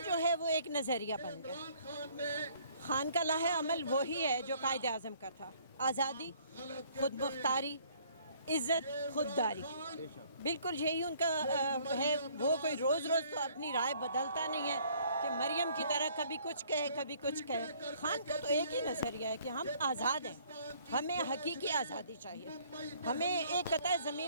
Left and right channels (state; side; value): inverted; both; correlation -0.60